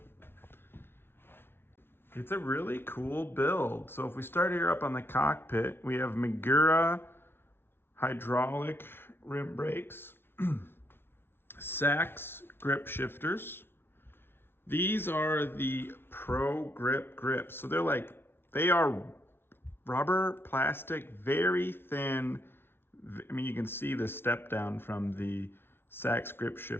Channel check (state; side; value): late; right; 0.11 ms